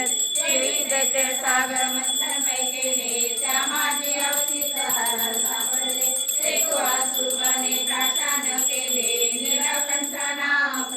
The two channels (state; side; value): identical; both; correlation 1.00